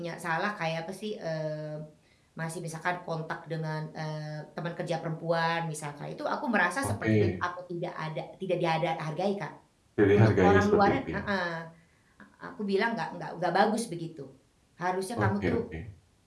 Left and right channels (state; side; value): identical; both; correlation 1.00